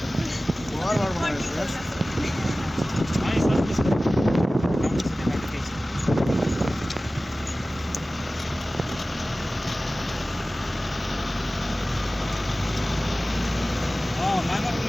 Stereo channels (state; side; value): normal; both; correlation 0.97